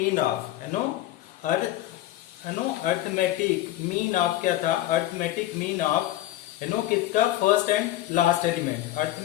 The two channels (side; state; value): right; quieter; 14.6 dB